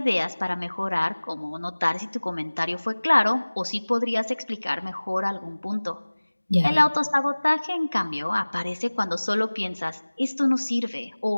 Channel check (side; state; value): both; inverted; correlation -1.00